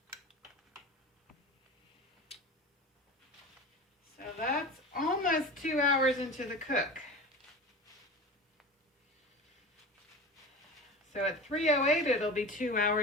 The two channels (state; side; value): normal; both; correlation 0.31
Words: So that's almost 2 hours into the cook. So at 3:08, it'll be 2